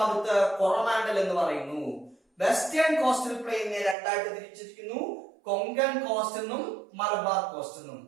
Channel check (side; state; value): left; drops out; at 4.0 s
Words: കൊറോമാൻഡൽ എന്ന് പറയുന്നു. വെസ്റ്റേൺ കോസ്റ്റൽ പ്ലെയിനെ രണ്ടായിട്ട് തിരിച്ചിരിക്കുന്നു, കൊങ്കൺ കോസ്റ്റ് എന്നും മലബാർ കോസ്റ്റ് എന്നും.